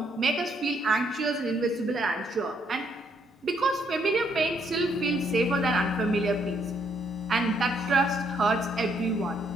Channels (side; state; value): both; normal; correlation 0.71